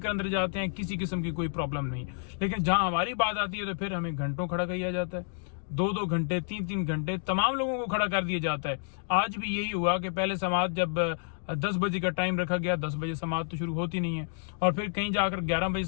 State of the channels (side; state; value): right; silent; digital silence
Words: अंदर जाते हैं, किसी किस्म की कोई प्रॉब्लम नहीं। लेकिन जहां हमारी बात आती है तो फिर हमें घंटों खड़ा किया जाता है, 2-2 घंटे, 3-3 घंटे तमाम लोगों को खड़ा कर दिया जाता है। आज भी यही हुआ कि पहले समाअत जब 10 बजे का टाइम रखा गया, 10 बजे समाअत तो शुरू होती नहीं है, और फिर कहीं जाकर 11 बजे